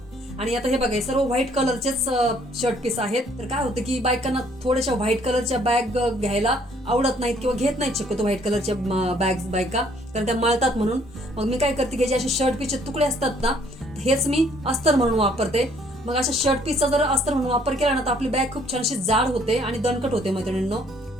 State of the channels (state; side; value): normal; both; correlation 0.63